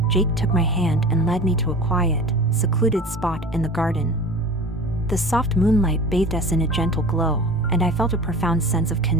Jake took my hand and led me to a quiet, secluded spot in the garden. The soft moonlight bathed us in a gentle glow, and I felt a profound sense of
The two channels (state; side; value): normal; both; correlation 0.37